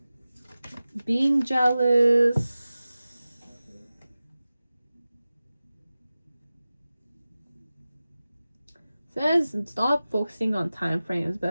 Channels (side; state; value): both; inverted; correlation -0.96